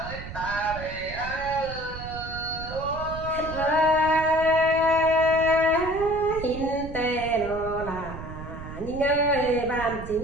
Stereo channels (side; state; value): right; noise; rumble, 11 dB below the sound